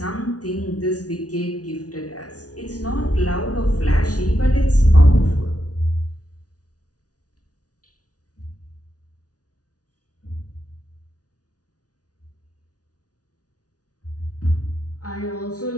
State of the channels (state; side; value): late; right; 0.68 ms